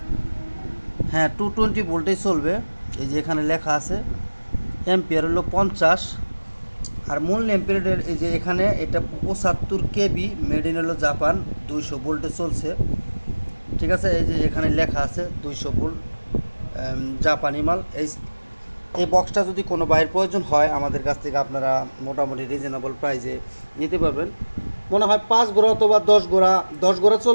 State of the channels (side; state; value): both; inverted; correlation -1.00